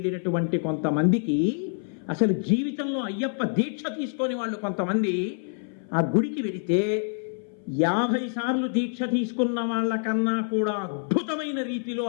కొంతమందికి అసలు జీవితంలో అయ్యప్ప దీక్ష తీసుకొని వాళ్ళు కొంతమంది ఆ గుడికి వెళితే 50 సార్లు దీక్ష తీసుకున్న వాళ్ళకన్నా కూడా అద్భుతమైన రీతిలో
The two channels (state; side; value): silent; right; 57 dB below the other